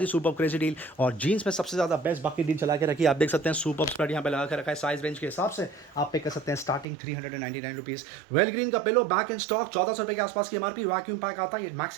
ही सुपर क्रेजी डील। और जीन्स में सबसे ज़्यादा बेस्ट बाकी डील चला के रखी है, आप देख सकते हैं सुपर स्प्रेड यहाँ पे लगा के रखा है। साइज रेंज के हिसाब से आप पे कर सकते हैं स्टार्टिंग 399 रुपीज़। वेल ग्रीन का पिलो बैक इन स्टॉक 1,400 रुपये के आसपास की MRP। वैक्यूम पैक आता है, ये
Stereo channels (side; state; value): left; drops out; at 6.9 s